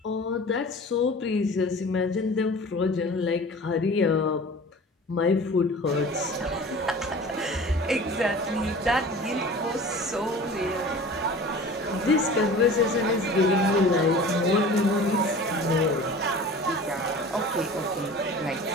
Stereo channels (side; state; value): both; normal; correlation 0.40